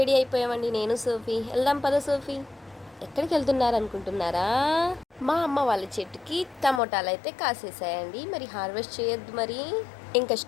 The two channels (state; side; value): drops out; right; at 6.8 s